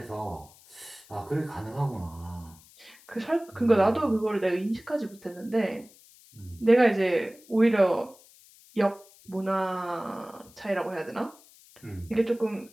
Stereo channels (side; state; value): left; noise; hiss, 25 dB below the sound